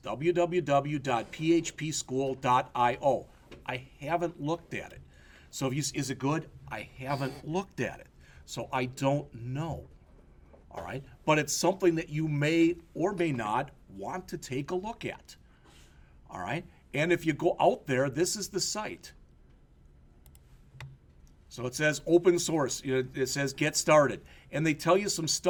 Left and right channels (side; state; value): both; identical; correlation 1.00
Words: www.phpschool.io. I haven't looked at it. So is it good? I haven't looked at it. So I don't know. All right? But it's something that you may or may not want to take a look at. All right? And if you go out there, this is the site. So it says open source. It says get started. And they tell you some